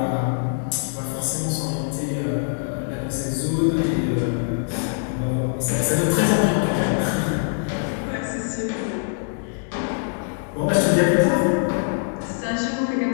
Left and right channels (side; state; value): right; silent; digital silence